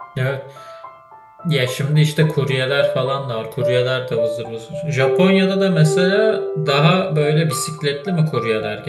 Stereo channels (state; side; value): identical; both; correlation 1.00